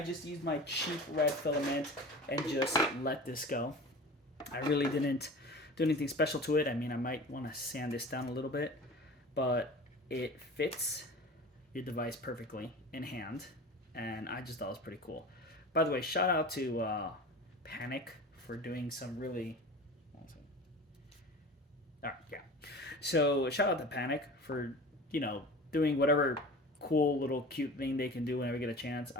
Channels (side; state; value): both; normal; correlation 0.37